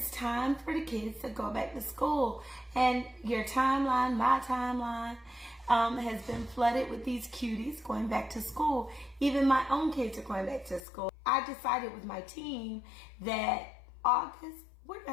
time for the kids to go back to school. And your timeline, my timeline, has been flooded with these cuties going back to school. Even my own kids are going back to school. I decided with my team that August, we're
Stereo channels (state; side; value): drops out; right; at 10.8 s